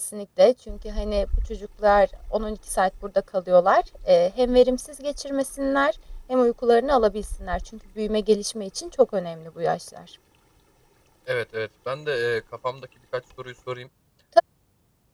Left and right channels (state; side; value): identical; both; correlation 1.00